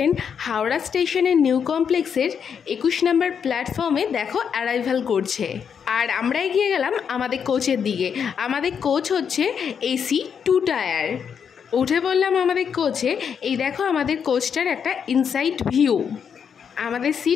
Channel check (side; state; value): right; quieter; 7.2 dB